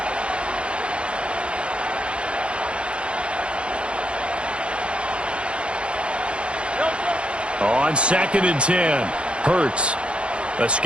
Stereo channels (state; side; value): late; left; 0.058 ms